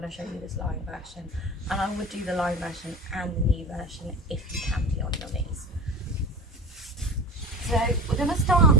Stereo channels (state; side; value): normal; both; correlation 0.31